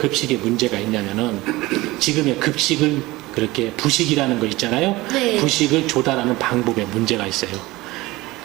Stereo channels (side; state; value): left; quieter; 20.0 dB